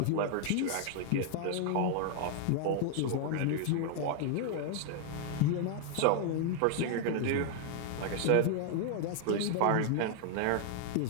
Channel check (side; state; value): both; different; correlation 0.00